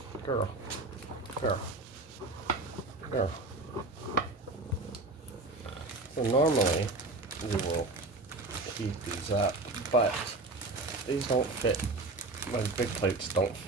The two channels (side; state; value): left; quieter; 3.1 dB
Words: Girl. So normally we will heat these up, but these don't fit. My big plates don't